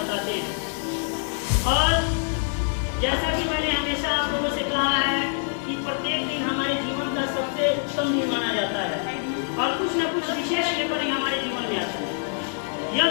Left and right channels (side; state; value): right; silent; 58 dB below the other